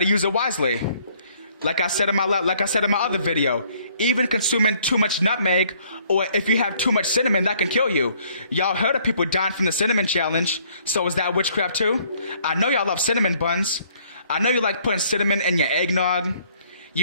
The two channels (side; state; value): both; inverted; correlation -0.62